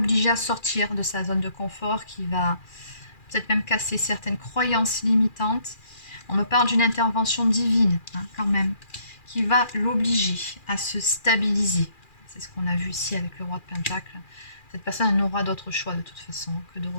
à sortir de sa zone de confort, qui va peut-être même casser certaines croyances limitantes. On me parle d'une intervention divine, hein, quand même, qui va l'obliger à se stabiliser. C'est ce qu'on a vu ici avec le roi de Pentacle. Cette personne n'aura d'autre choix de toute façon que de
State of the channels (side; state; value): right; late; 2.4 ms